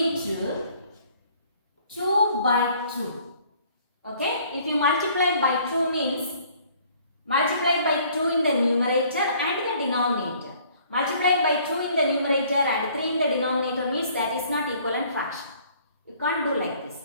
2 by 2. Okay, if you multiply by 2 means multiply by 2 in the numerator and the denominator. Multiply by 2 in the numerator and 3 in the denominator means that is not equivalent fraction. You can't do like this.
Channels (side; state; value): both; inverted; correlation -0.58